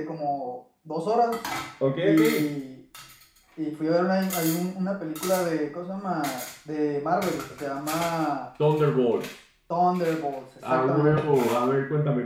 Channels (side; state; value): both; identical; correlation 1.00